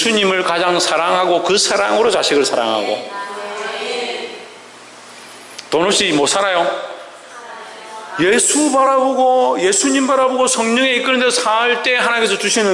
가장 사랑하고 그 사랑으로 자식을 사랑하고. 돈 없이 못 살아요. 예수 바라보고 예수님 바라보고 성령에 이끄는 데서 살 때 하나님께서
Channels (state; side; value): identical; both; correlation 1.00